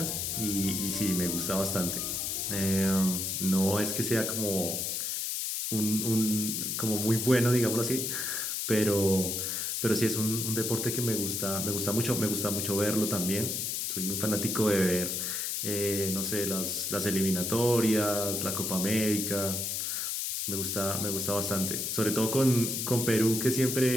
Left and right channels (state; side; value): noise; left; hiss, 1 dB below the sound